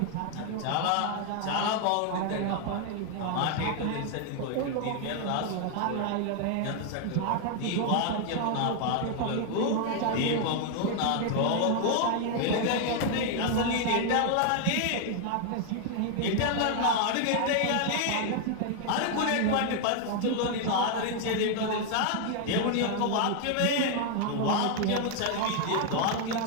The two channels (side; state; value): both; different; correlation 0.00